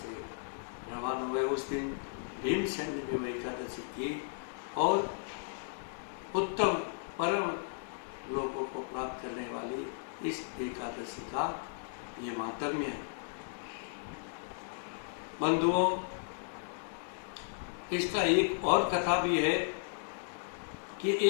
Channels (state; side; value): silent; right; digital silence